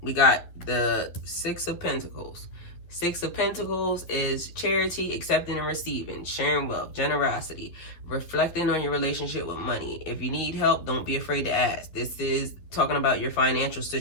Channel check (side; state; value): right; late; 11 ms